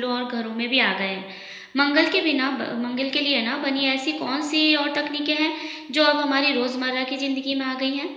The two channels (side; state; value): both; identical; correlation 1.00